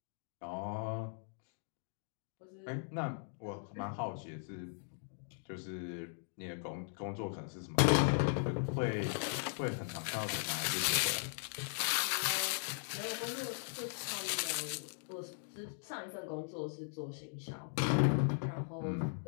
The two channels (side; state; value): right; silent; digital silence